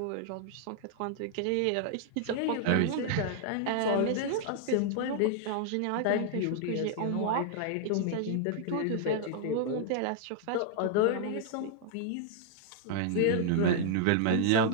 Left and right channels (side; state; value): both; different; correlation -0.01